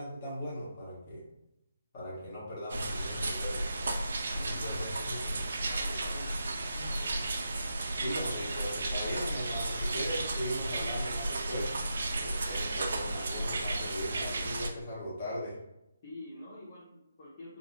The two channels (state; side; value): inverted; both; correlation -0.86